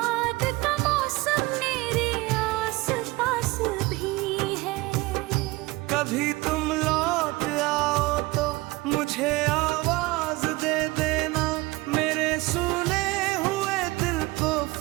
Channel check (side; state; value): left; quieter; 21.6 dB